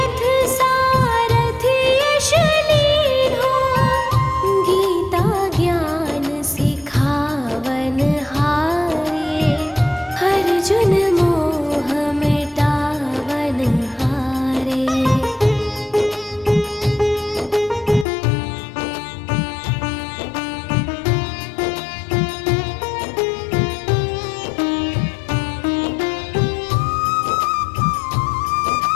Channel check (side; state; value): right; drops out; at 18.1 s